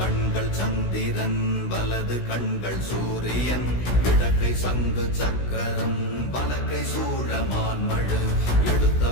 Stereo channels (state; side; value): late; right; 16 ms